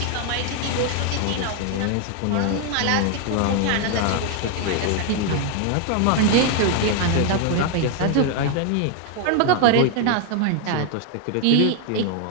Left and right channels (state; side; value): different; both; correlation 0.01